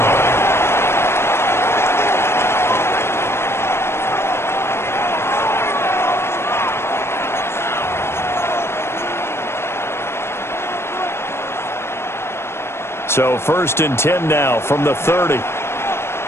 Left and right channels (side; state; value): right; late; 0.12 ms